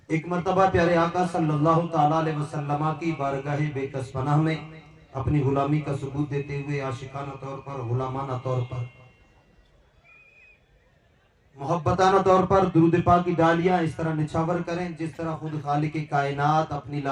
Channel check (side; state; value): both; identical; correlation 1.00